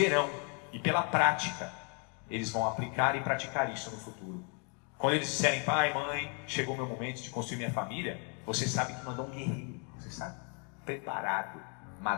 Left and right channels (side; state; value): right; quieter; 35.4 dB